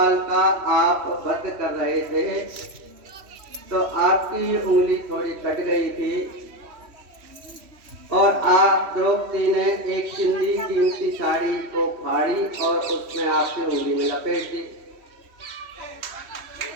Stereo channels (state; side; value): late; left; 3.1 ms